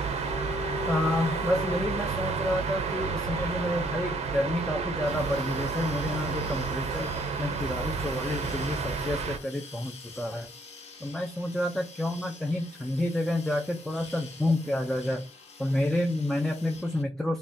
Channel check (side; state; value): both; normal; correlation 0.71